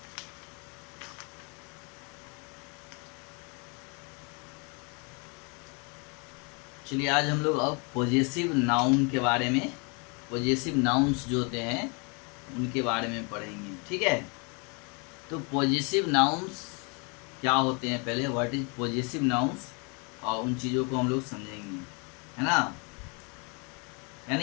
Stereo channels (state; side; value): quieter; right; 33.2 dB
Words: चलिए आज हम लोग अब पॉजेसिव नाउन के बारे में, पॉजेसिव नाउन्स जो होते हैं उनके बारे में पढ़ेंगे। ठीक है, तो पॉजेसिव नाउन्स क्या होते हैं, पहले व्हाट इज पॉजेसिव नाउन्स, और उन चीज़ों को हम लोग समझेंगे, है ना।